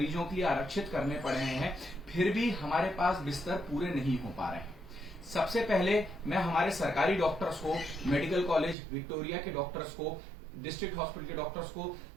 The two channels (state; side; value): drops out; left; at 8.8 s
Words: के लिए आरक्षित करने पड़े हैं, फिर भी हमारे पास बिस्तर पूरे नहीं हो पा रहे हैं। सबसे पहले मैं हमारे सरकारी डॉक्टर्स को, मेडिकल कॉलेज विक्टोरिया के डॉक्टर्स को, डिस्ट्रिक्ट हॉस्पिटल के डॉक्टर्स को